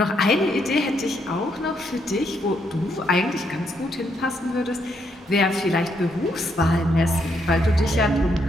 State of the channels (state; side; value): normal; both; correlation 0.75